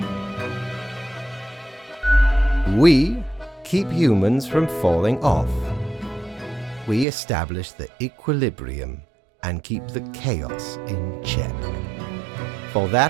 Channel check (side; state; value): left; drops out; at 7.1 s